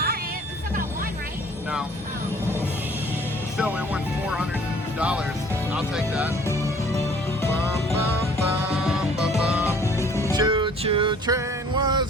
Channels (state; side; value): normal; both; correlation 0.54